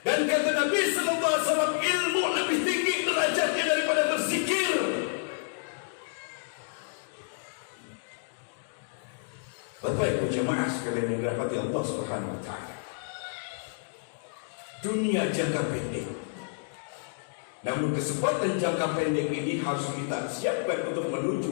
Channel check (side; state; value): right; silent; digital silence